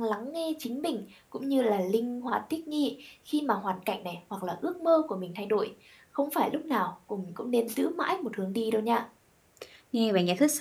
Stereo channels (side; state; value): both; identical; correlation 1.00